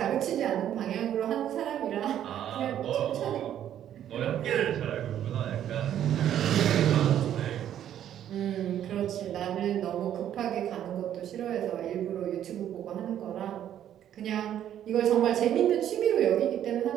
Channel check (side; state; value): left; quieter; 10.7 dB